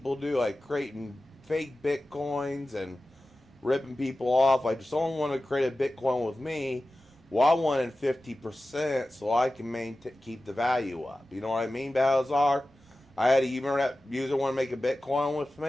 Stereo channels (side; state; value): both; normal; correlation 0.95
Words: do, like creating fake Bitcoins and ripping people off, I just only want to create a Bitcoin with me. Well, I wanted 50% so I can keep the value up. You know what I mean, Balazar? I had a user want to make a Bitcoin with